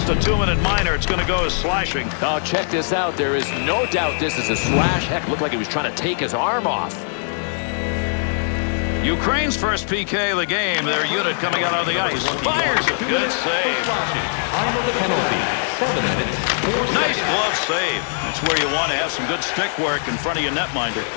a 2-minute minor. It's going to go as slashing. Now check this out. There is no doubt this is a slash. Heck, looked like he was trying to take his arm off. Ukraine's first PK of the game. Their unit coming out on the ice. Fires it. Good save. Time of the penalty. 7 minutes. Nice glove save. That's where you want to have some good stick work in front of your netminder.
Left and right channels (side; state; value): right; silent; digital silence